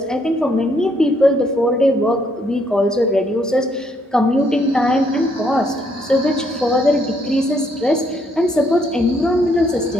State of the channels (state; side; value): normal; both; correlation 0.71